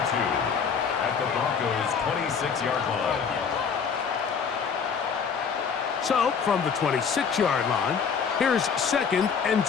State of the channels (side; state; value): right; quieter; 6.3 dB